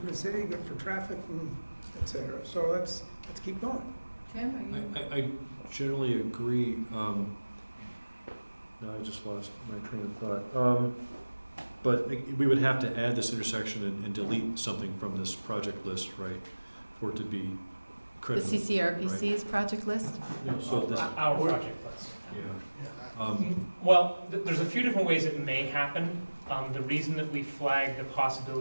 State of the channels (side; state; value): both; inverted; correlation -1.00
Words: the city, good for traffic, and et cetera. So let's keep going. Tim, are you? I generally agree. Now I just lost my train of thought. But we would have to add this intersection and delete something from this project list, right? For it to be The credible. CCRPC's project list? So this, Our project list. yeah. Well, there's a few different ways it may happen. The reason that we flag the